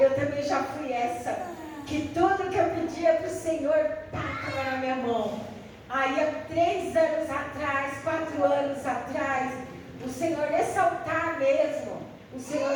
também já fui essa, que tudo que eu pedia para o Senhor, estava na minha mão. Aí há 3 anos atrás, 4 anos atrás, o Senhor, nesse altar mesmo, o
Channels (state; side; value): identical; both; correlation 1.00